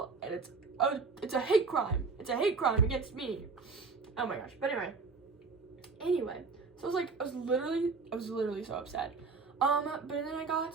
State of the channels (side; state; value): left; quieter; 4.5 dB